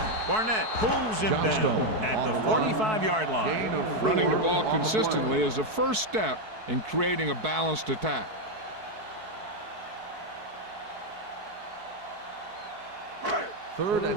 Barnett pulls him down at the 45-yard line. Running the ball consistently is the first step in creating a balanced attack. Third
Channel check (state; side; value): late; left; 4.6 ms